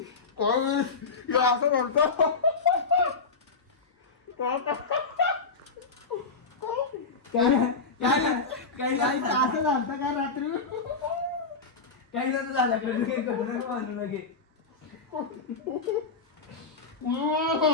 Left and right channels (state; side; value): quieter; right; 4.4 dB